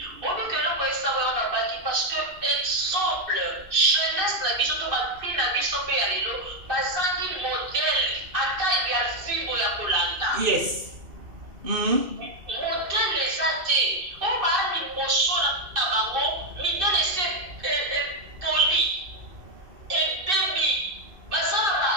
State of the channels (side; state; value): left; late; 2.6 ms